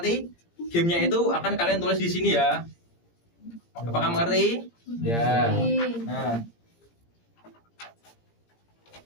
gamenya itu akan kalian tulis di sini ya. Apakah mengerti? Ya.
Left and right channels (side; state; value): right; late; 17 ms